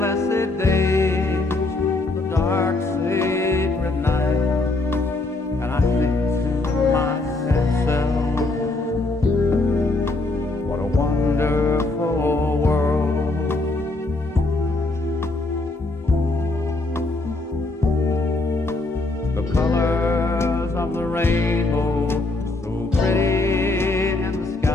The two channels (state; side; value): quieter; right; 3.1 dB